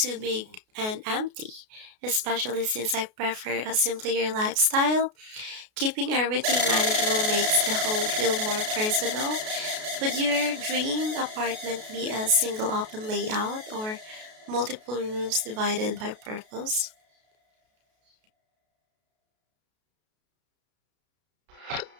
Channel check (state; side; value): late; left; 33 ms